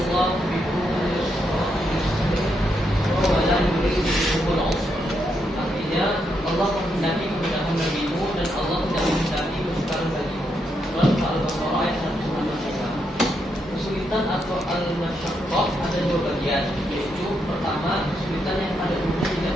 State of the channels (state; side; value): normal; both; correlation 0.80